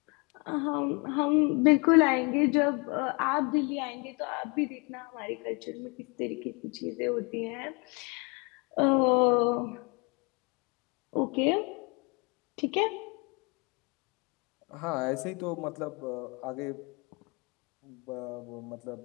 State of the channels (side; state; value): right; quieter; 30.9 dB